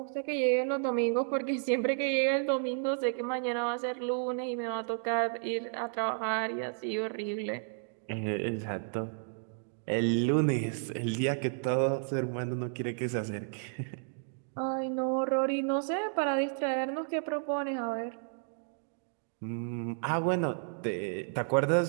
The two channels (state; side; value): silent; left; digital silence